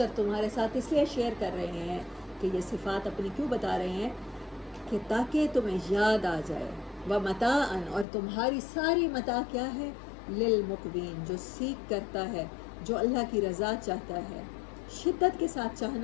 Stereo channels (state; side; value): drops out; right; at 8.1 s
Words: تمہارے ساتھ اس لیے شیئر کر رہے ہیں کہ یہ صفات اپنی کیوں بتا رہے ہیں کہ تاکہ تمہیں یاد آ جائے، ومتاعا، اور تمہاری ساری متاع کیا ہے، للمقوین، جو سیکھ کرتا ہے، جو اللہ کی رضا چاہتا ہے، شدت کے ساتھ